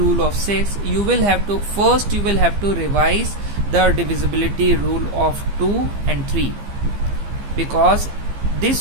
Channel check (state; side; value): late; left; 15 ms